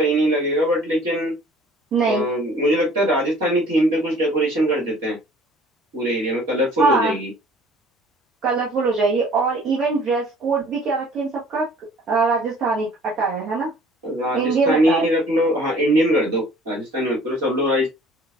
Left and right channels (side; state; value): both; normal; correlation 0.53